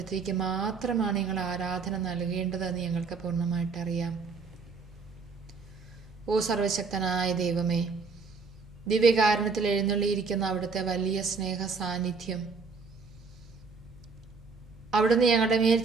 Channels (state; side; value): quieter; left; 4.7 dB